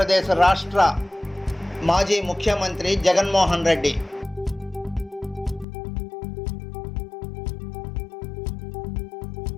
రాష్ట్ర మాజీ ముఖ్యమంత్రి జగన్మోహన్ రెడ్డి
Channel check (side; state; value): right; drops out; at 5.7 s